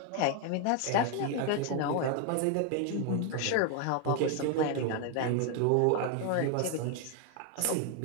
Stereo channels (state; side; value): different; both; correlation 0.01